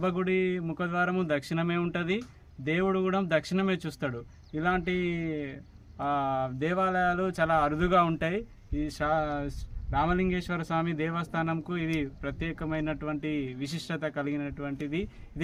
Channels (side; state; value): both; identical; correlation 1.00